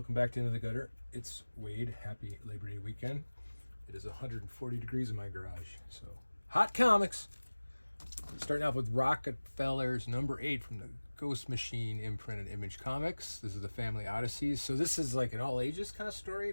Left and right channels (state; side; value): inverted; both; correlation -1.00